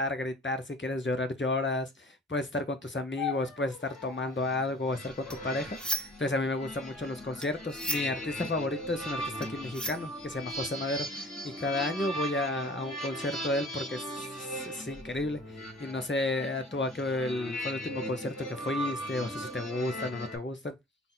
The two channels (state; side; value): normal; both; correlation 0.46